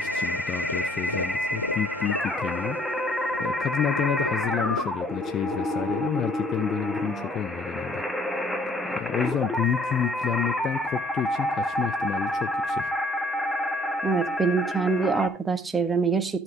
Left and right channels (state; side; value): normal; both; correlation 0.60